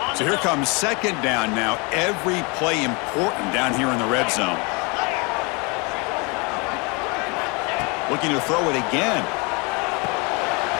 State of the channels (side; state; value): right; quieter; 29.8 dB